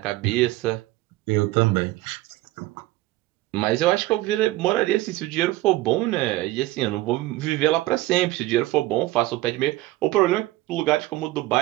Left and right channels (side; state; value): left; quieter; 17.8 dB